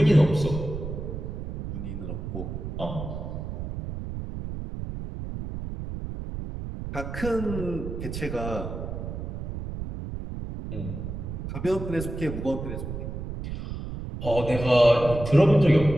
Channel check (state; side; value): noise; right; rumble, 7 dB below the sound